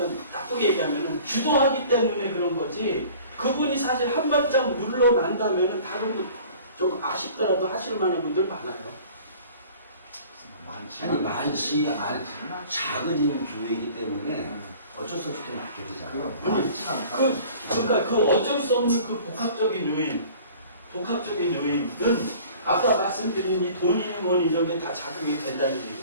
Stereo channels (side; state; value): both; inverted; correlation -0.47